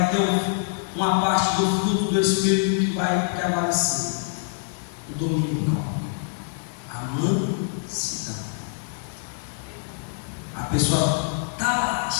ter uma parte do fruto do Espírito que vai prevalecer. O domínio próprio, a mansidão. A pessoa está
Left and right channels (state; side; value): silent; right; 61 dB below the other